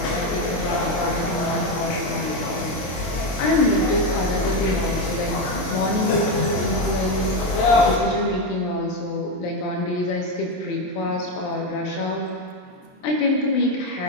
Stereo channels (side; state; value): right; late; 23 ms